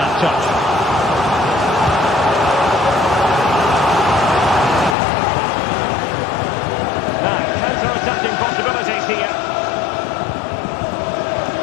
touch. Now, counter-attacking possibilities here.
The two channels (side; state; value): right; drops out; at 5.0 s